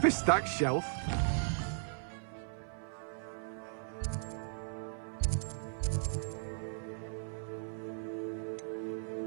a stacked shelf.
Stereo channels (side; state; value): left; silent; 53 dB below the other